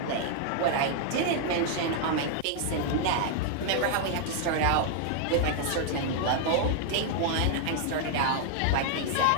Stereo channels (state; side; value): different; both; correlation 0.00